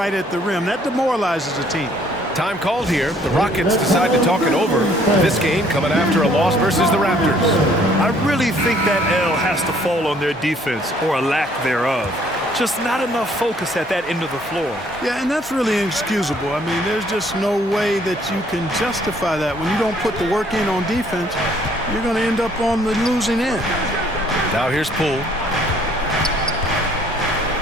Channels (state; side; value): normal; both; correlation 0.62